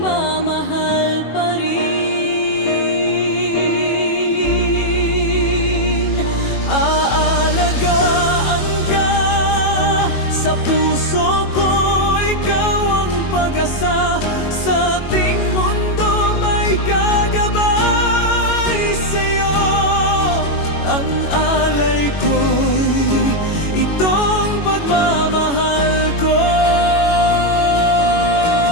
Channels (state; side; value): late; right; 21 ms